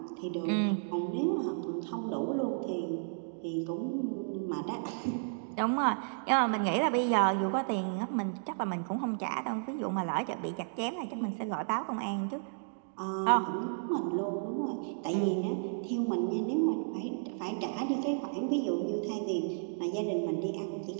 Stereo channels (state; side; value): silent; left; digital silence